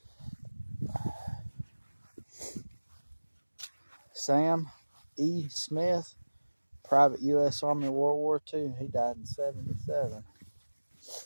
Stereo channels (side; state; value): both; inverted; correlation -1.00